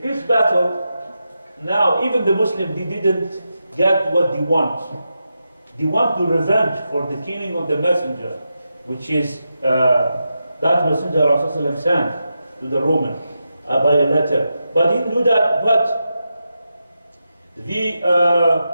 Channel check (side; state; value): both; inverted; correlation -0.88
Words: battle, now even the Muslims, they didn't get what they want. They want to revenge for the killing of the messenger, which is that messenger Rasulullah sent to the Roman by a letter. But he didn't do that, but